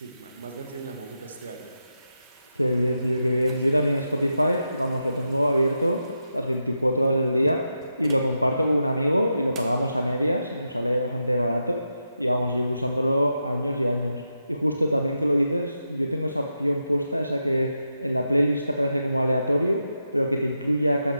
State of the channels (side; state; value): both; inverted; correlation -0.87